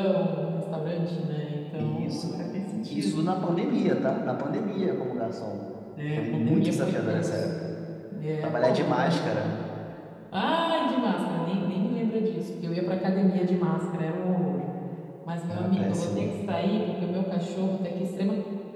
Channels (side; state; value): both; identical; correlation 1.00